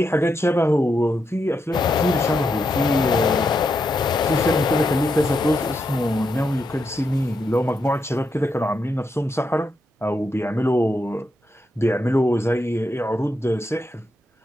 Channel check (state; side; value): normal; both; correlation 0.83